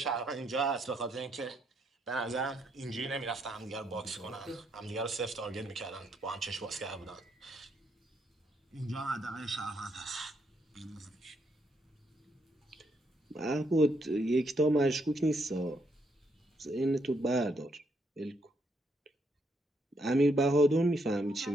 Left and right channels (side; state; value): both; normal; correlation 0.75